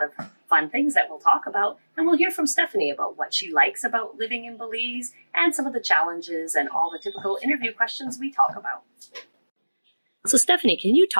of fun things that we'll talk about, and we'll hear from Stephanie about what she likes about living in Belize and some of the challenges and all the typical interview questions we talk about. So Stephanie, can you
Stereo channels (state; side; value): inverted; both; correlation -1.00